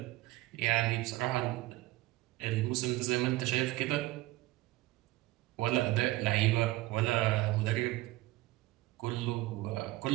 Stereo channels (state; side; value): quieter; left; 18.5 dB